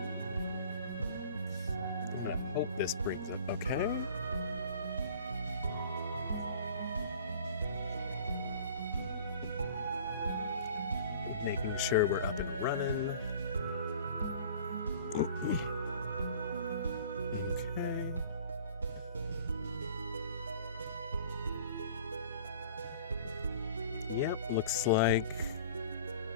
I'm gonna hope this brings up okay. Making sure we're up and running. Okay. Yep, looks like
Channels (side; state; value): both; inverted; correlation -0.47